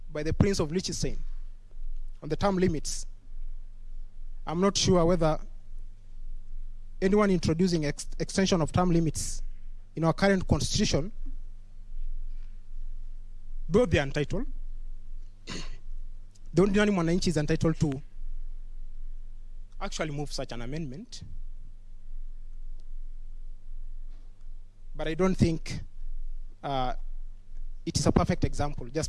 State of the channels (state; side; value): identical; both; correlation 1.00